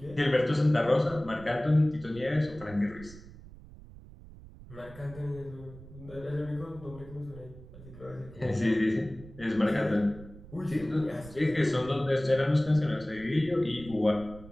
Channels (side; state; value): right; noise; rumble, 18 dB below the sound